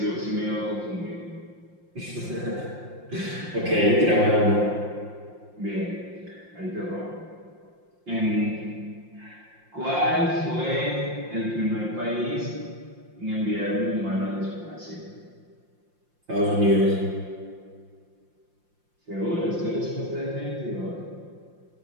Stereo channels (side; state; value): left; late; 5.7 ms